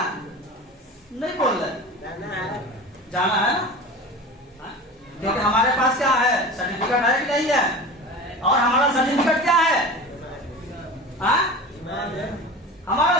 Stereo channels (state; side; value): normal; both; correlation 0.33